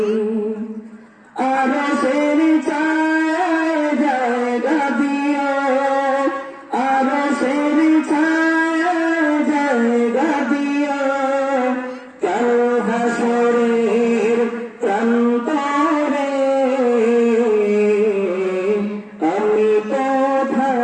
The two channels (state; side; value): identical; both; correlation 1.00